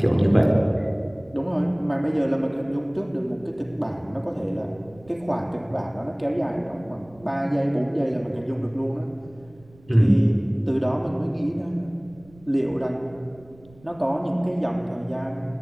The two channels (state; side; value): noise; right; rumble, 25 dB below the sound